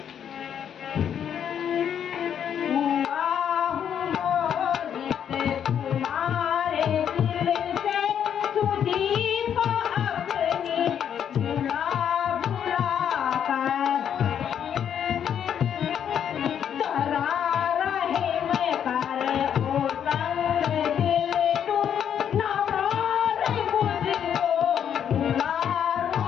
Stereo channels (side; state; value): right; quieter; 8.8 dB